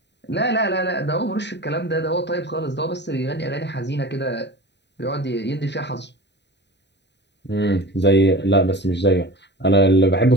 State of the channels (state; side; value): late; right; 0.50 ms